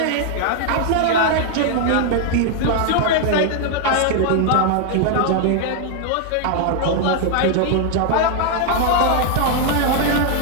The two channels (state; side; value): different; both; correlation 0.00